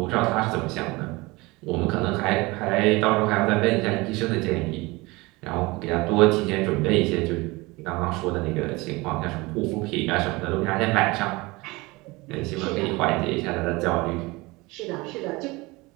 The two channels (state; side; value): quieter; left; 23.1 dB